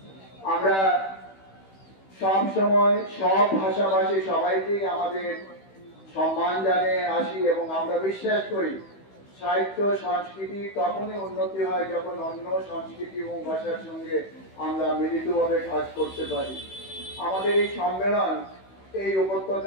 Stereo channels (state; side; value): late; right; 16 ms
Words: আমরা সব সময় সব ভাষাভাষী সবাইকেই আমাদের সম্মান জানিয়ে আসি এবং আমরা বিশ্বাস করি সাহিত্য সংস্কৃতি তখনই উন্নতি হয় যখন অন্য সংস্কৃতি এবং ভাষার সঙ্গে আমরা মিলিতভাবে কাজ করতে পারি। আমাদের এই সম্মেলন এই